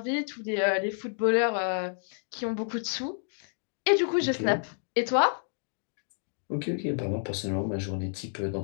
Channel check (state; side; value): silent; right; 58 dB below the other